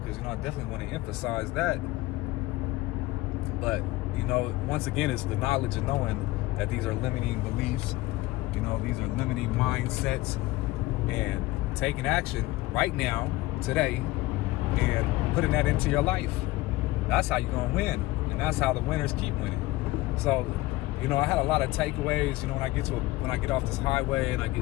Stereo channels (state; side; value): quieter; right; 18.9 dB